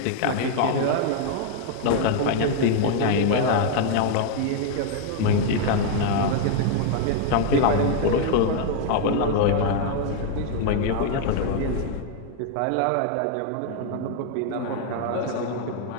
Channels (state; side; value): different; both; correlation 0.00